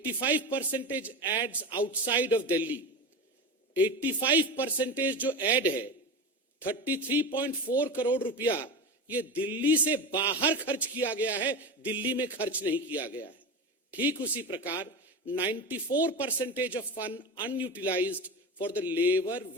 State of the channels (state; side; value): normal; both; correlation 0.24